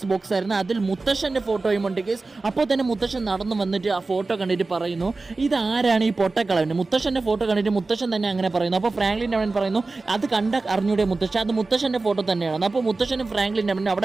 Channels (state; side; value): quieter; left; 3.6 dB